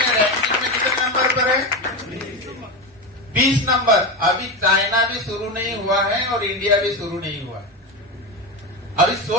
रैंकिंग में कितने नंबर पर है? 20 नंबर। अभी चाइना भी शुरू नहीं हुआ है और इंडिया भी शुरू नहीं हुआ है। अभी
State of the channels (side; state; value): both; normal; correlation 0.17